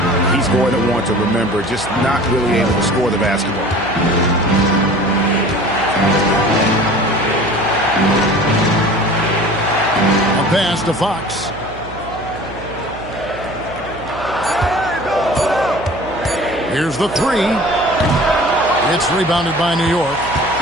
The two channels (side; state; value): right; noise; hum, 15 dB below the sound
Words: he's going to want to remember, just not really able to score the basketball. A pass to Fox. Here's the 3. It's rebounded by New York.